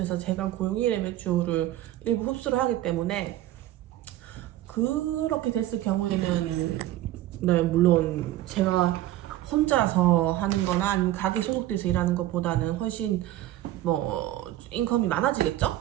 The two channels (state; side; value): quieter; left; 14.5 dB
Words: 제가 고용인의 매출을 일부 흡수를 하기 때문에 그렇게 됐을 경우에는 네, 물론 제가 혼자서 하는 거나 아니면 가게 소속돼서 일하는 것보다는 훨씬 뭐 인컴이 많아지겠죠?